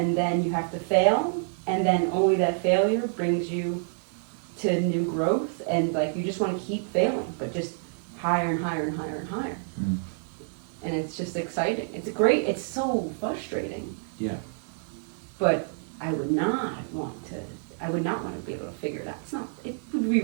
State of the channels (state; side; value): silent; left; digital silence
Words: then you have to fail, and then only that failure brings you to new growth, and like, you just want to keep failing, but just higher and higher and higher and higher. And it's just exciting. It's so frustrating, Yeah. but I would not want to be able to figure it out. It would be